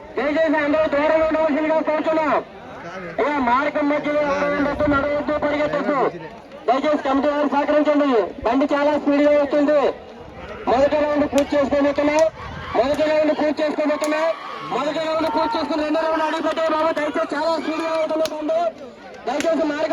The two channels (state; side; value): identical; both; correlation 1.00